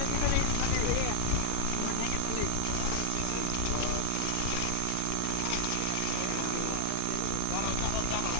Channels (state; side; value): different; both; correlation -0.01